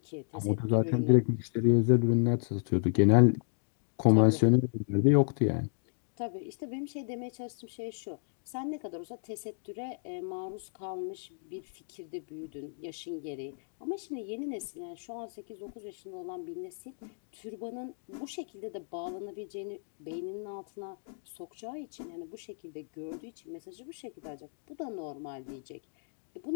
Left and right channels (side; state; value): right; silent; digital silence